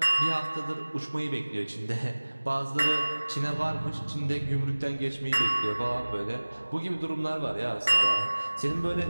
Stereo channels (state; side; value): inverted; both; correlation -1.00